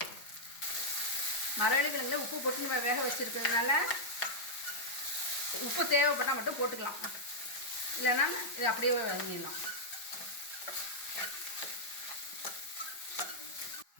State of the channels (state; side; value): late; right; 5.0 ms